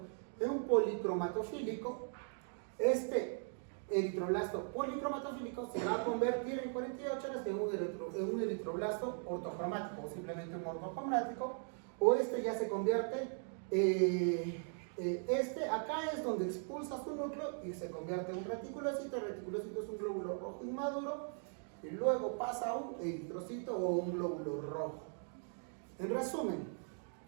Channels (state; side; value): silent; left; 52 dB below the other